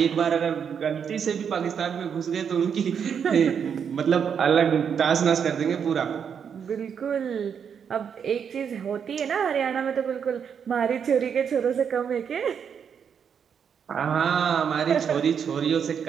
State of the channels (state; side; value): quieter; left; 7.4 dB